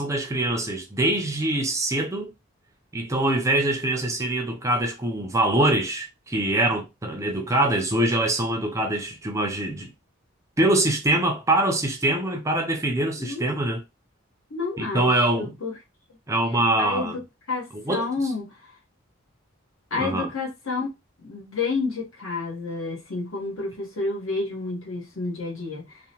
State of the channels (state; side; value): normal; both; correlation 0.35